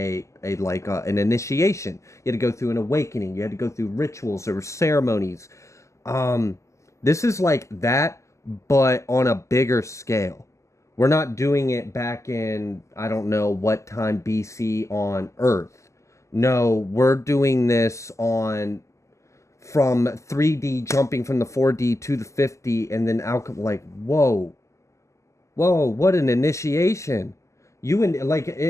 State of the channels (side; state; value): right; late; 0.14 ms